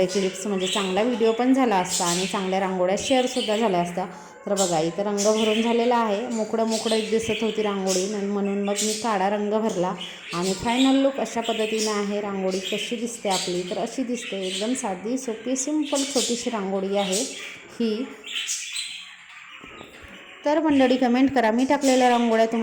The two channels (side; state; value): both; identical; correlation 1.00